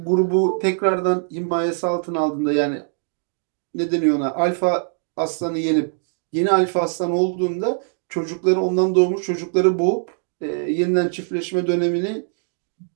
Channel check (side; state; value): left; silent; digital silence